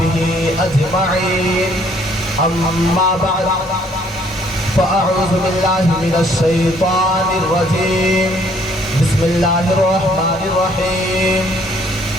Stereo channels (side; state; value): both; normal; correlation 0.63